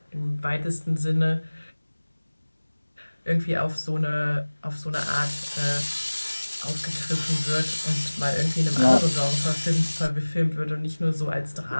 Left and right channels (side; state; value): both; inverted; correlation -1.00